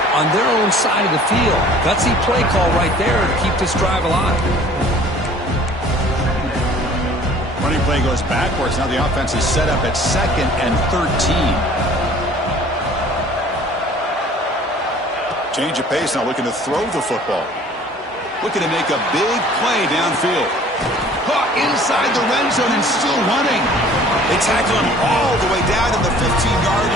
on their own side of the field. Gutsy play call right there to keep this drive alive. Running play goes backwards. Now the offense is set up at 2nd and 13. Change of pace now, looking to throw the football. Looking to make a big play downfield. Caught inside the red zone and still running. They tackle him all the way down to the 15-yard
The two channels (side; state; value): both; normal; correlation 0.51